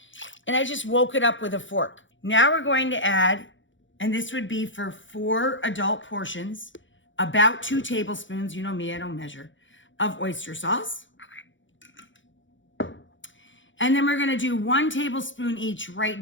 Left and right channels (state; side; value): late; right; 0.56 ms